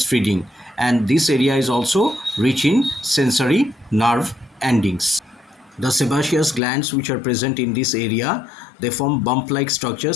and this area is also rich in sensory nerve endings. The sebaceous glands which are present in this area, they form bump-like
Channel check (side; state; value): right; drops out; at 6.6 s